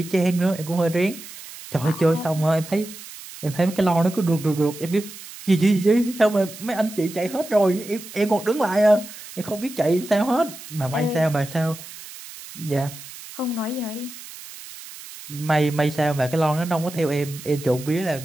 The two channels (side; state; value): right; noise; hiss, 15 dB below the sound